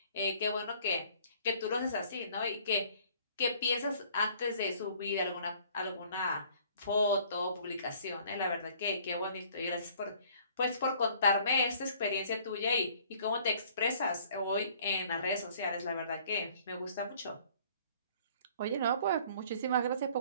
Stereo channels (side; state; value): both; inverted; correlation -0.56